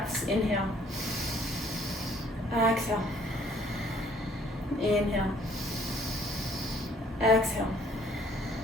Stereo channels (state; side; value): normal; both; correlation 0.60